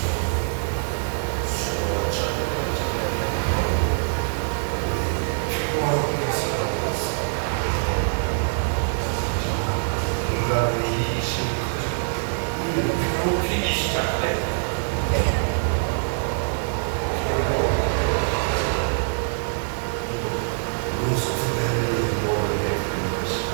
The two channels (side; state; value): left; silent; digital silence